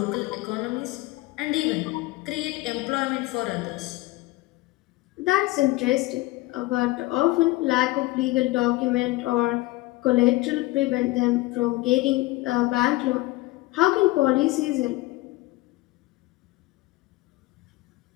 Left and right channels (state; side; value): quieter; right; 19.6 dB